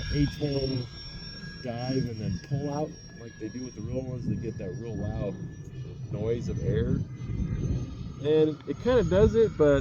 A-10 dive and then pull out like they do with the real ones. They get that real loud noise of air, and it kind of does it,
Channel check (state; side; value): identical; both; correlation 1.00